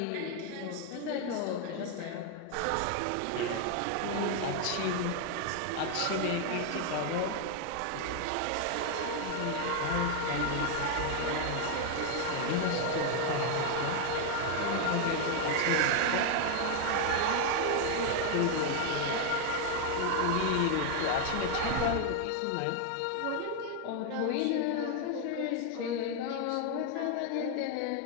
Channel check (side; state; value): both; different; correlation 0.01